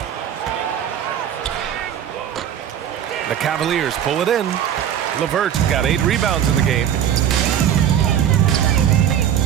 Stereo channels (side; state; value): left; quieter; 9.8 dB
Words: The Cavaliers pull it in. LeVert got 8 rebounds in the game.